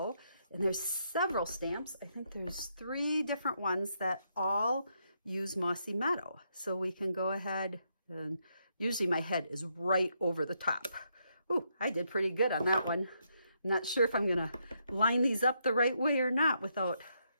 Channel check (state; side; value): inverted; both; correlation -0.78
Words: And there's several stamps. I think there's 3 different ones that all use Mossy Meadow. So we can go ahead, and usually my head is right over the top. Ooh, I did pretty good on that one. I'm not sure if I'm going to line these up the right way or not without